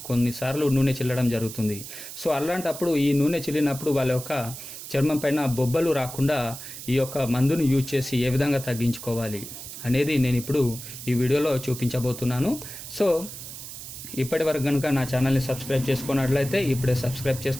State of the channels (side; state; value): right; noise; hiss, 11 dB below the sound